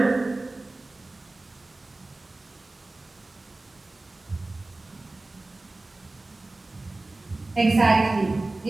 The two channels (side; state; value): left; quieter; 3.0 dB